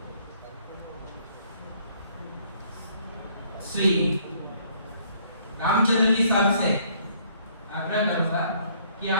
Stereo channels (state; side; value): inverted; both; correlation -0.63